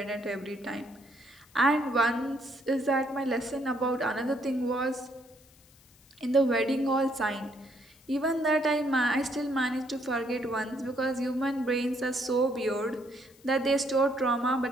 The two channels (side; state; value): left; noise; hiss, 28 dB below the sound